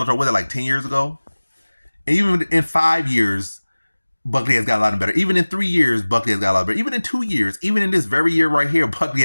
was it like 10 years ago? And even in 5 years, Buckley has gotten a lot better. Even in 3 years, Buckley has got a lot better. Even in 2 years, even in this very year right here, Buckley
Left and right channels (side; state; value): both; inverted; correlation -1.00